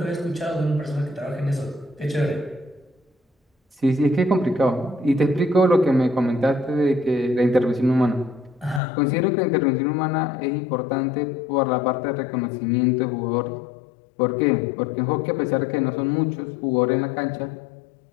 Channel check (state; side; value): drops out; right; at 8.8 s